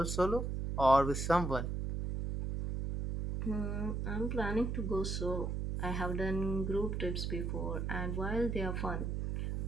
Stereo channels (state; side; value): noise; right; hum, 1 dB below the sound